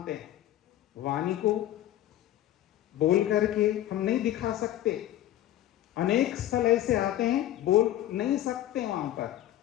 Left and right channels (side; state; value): right; quieter; 13.2 dB